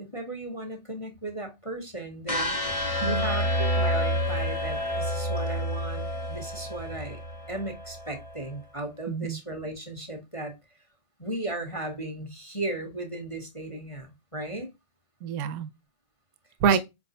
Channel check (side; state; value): right; late; 1.5 ms